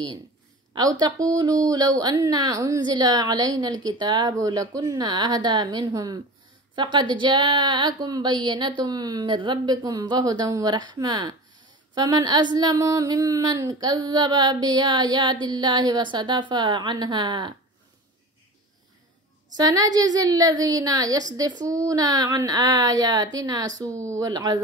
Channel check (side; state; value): both; normal; correlation 0.34